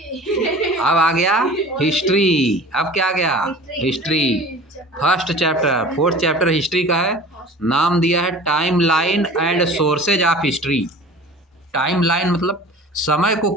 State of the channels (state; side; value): normal; both; correlation 0.41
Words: अब आ गया हिस्ट्री। अब क्या आ गया? History. First chapter, fourth chapter history का है। नाम दिया है time line and sources of history. Time line मतलब समय को